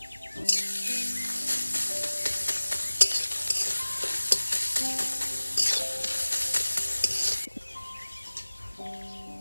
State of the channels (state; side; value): inverted; both; correlation -1.00